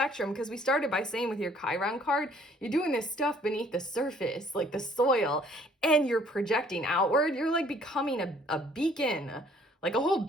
because we started by saying with your Chiron card, you're doing this stuff beneath the surface, like the soil, and you're projecting outward. You're like becoming a beacon, like a whole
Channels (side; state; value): both; normal; correlation 0.59